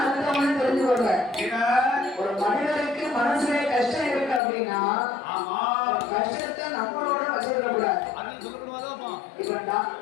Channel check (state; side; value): drops out; right; at 4.4 s